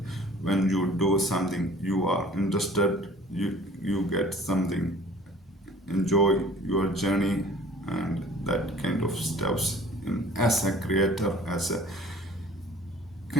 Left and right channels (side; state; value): both; normal; correlation 0.49